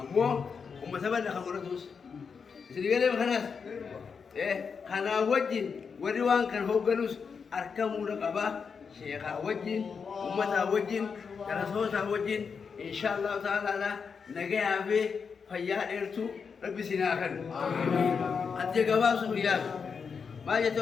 ummata bala khamratus Sedikit makanlah, karena wajin, wadiwan kan hoganus arkam muda kaba, syekh wajin, umat wajin, rasul wajin, insyaallah taala lah, negara abe, fayad ertu, lebih sinakan. Aja kaba suliah, macam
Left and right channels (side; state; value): right; quieter; 5.8 dB